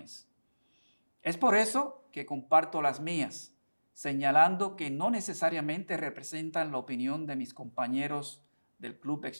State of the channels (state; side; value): inverted; both; correlation -1.00